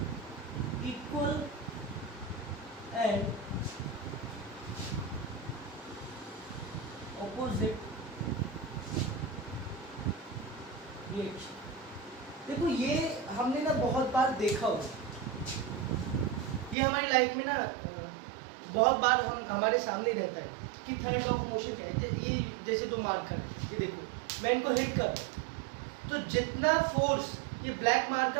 equal and opposite reaction. देखो ये हमने ना बहुत बार देखा हो, ये हमारी लाइफ में ना बहुत बार हम हमारे सामने रहता है कि थर्ड लॉ ऑफ मोशन क्या है। ये जैसे दो मार्कर, ये देखो मैं इनको हिट कर रहा हूं, तो जितना फोर्स ये ब्लैक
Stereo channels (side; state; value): left; drops out; at 16.8 s